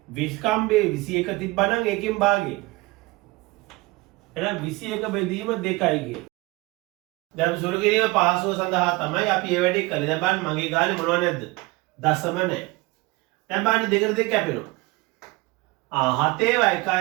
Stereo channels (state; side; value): quieter; left; 22.6 dB